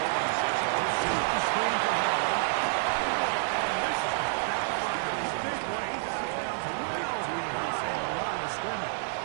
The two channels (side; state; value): left; silent; digital silence